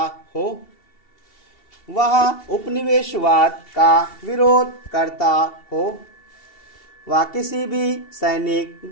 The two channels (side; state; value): right; late; 2.7 ms